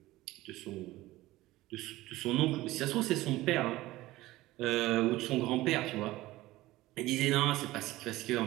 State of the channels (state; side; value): quieter; left; 17.7 dB